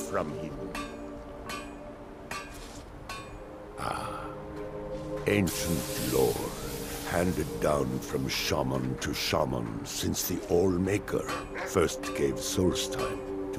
him. Ancient lore, handed down from shaman to shaman since the All-Maker first gave Soul's time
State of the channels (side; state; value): both; identical; correlation 1.00